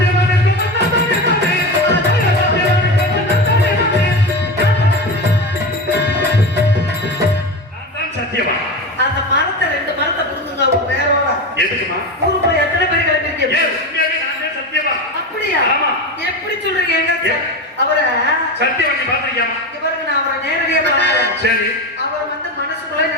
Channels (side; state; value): both; normal; correlation 0.23